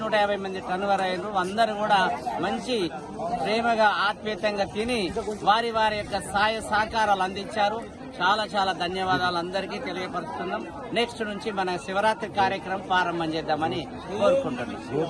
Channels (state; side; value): identical; both; correlation 1.00